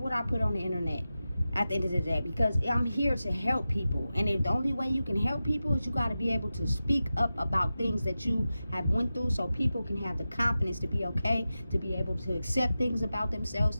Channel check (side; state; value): both; inverted; correlation -0.93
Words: I put on the internet at the end of the day, because I'm here to help people. And if the only way you can help people is you got to be able to speak up about things that you have went through so people can have the confidence to be okay, to be able to accept things about themselves,